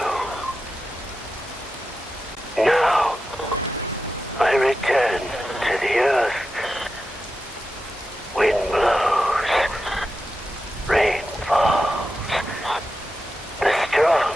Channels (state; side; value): normal; both; correlation 0.90